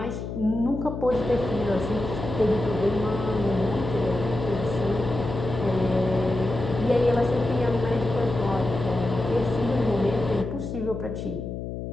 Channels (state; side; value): noise; left; hum, 6 dB below the sound